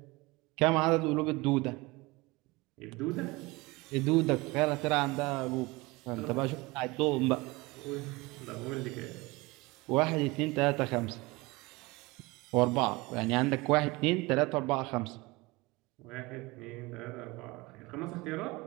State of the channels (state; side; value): quieter; left; 22.9 dB